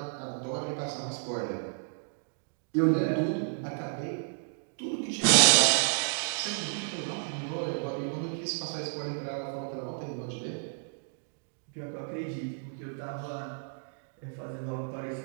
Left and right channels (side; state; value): left; silent; digital silence